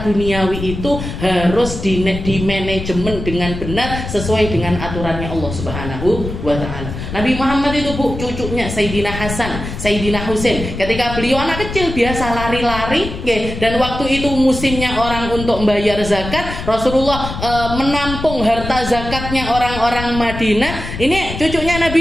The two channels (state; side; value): noise; left; rumble, 8 dB below the sound